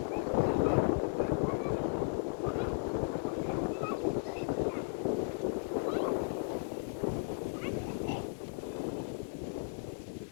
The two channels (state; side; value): silent; right; digital silence